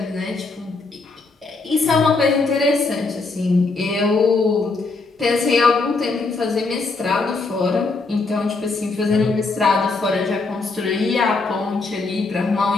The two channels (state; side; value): quieter; right; 3.8 dB